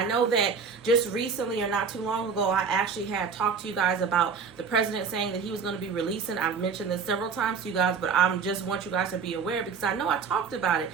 know that just recently or not too long ago, I actually had talked to you guys about the president saying that he was going to be releasing. I've mentioned this several times to you guys, but I just want you guys to be aware because I know I talked about it.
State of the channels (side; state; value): left; quieter; 5.7 dB